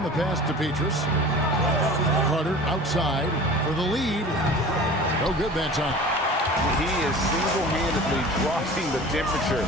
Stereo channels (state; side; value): normal; both; correlation 0.40